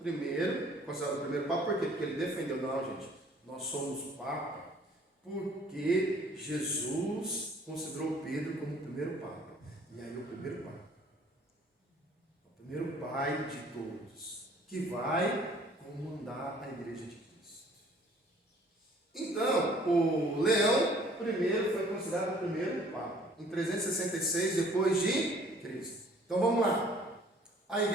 primeiro, considerado o primeiro papa, por quê? Porque ele defendeu, não, gente, nós somos papa, porque Jesus considerou Pedro como o primeiro papa. E aí o primeiro papa, o primeiro pai de todos, que vai comandar a igreja de Cristo. Então, o Leão primeiro foi considerado o primeiro papa, em 366 depois de Cristo. Então vamos lá. A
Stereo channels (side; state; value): both; normal; correlation 0.56